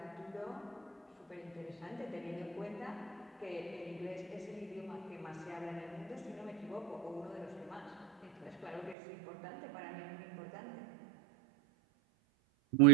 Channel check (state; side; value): drops out; left; at 9.0 s